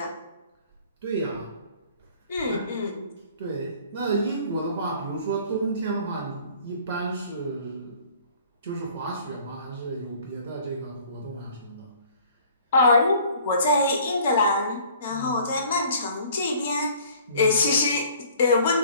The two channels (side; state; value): both; inverted; correlation -0.53